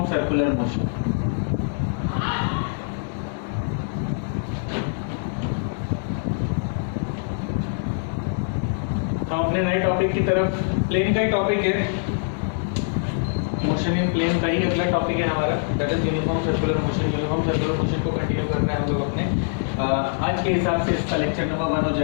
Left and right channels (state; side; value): silent; right; 60 dB below the other